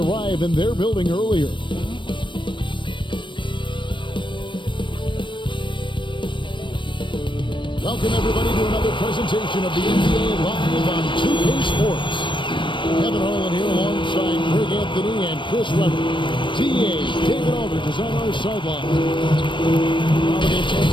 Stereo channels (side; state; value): right; late; 0.24 ms